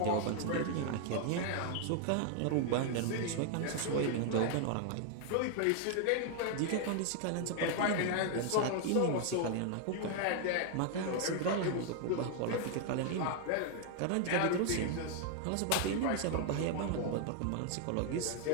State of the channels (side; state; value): both; different; correlation 0.00